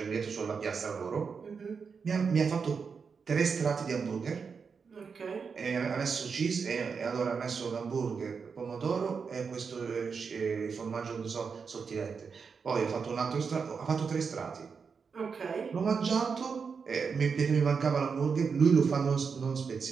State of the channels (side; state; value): left; quieter; 5.6 dB